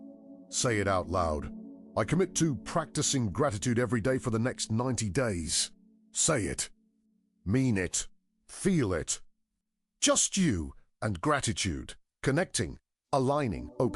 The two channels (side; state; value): both; identical; correlation 1.00